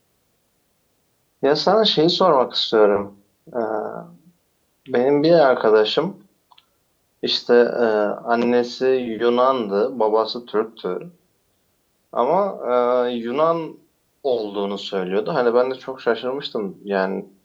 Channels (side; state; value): both; identical; correlation 1.00